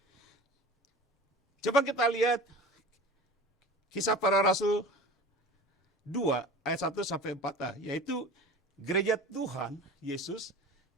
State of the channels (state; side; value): normal; both; correlation 0.38